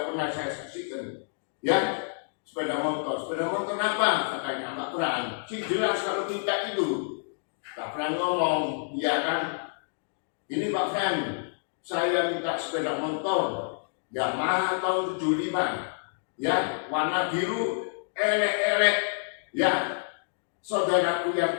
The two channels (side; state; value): right; silent; digital silence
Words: pernah saya saksikan, ya, sepeda motor apa? Katanya Pak Pran, sih jelas kalau minta itu, Pak Pran ngomong, ya kan, ini Pak Pran, saya minta sepeda motor, Yamaha tahun 75, ya, warna biru, elek-elek, ya. Saudaraku yang